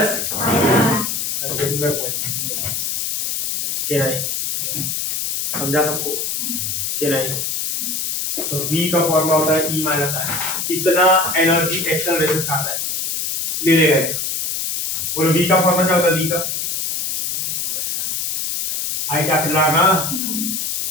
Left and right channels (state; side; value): noise; left; hiss, 1 dB below the sound